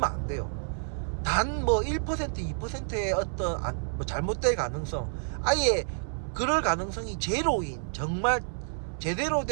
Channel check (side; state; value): left; silent; 58 dB below the other